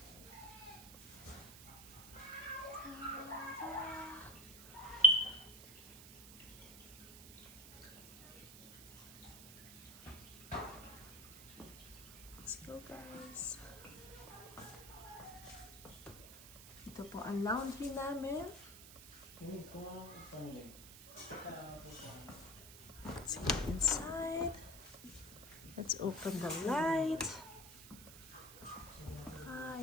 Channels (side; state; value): right; noise; hiss, 15 dB below the sound